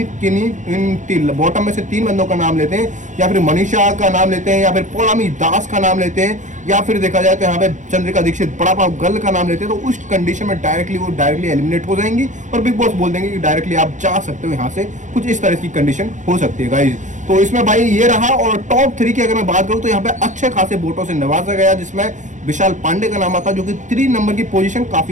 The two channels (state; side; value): late; left; 0.36 ms